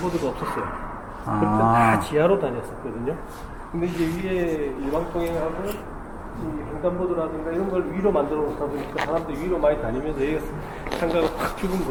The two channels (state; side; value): identical; both; correlation 1.00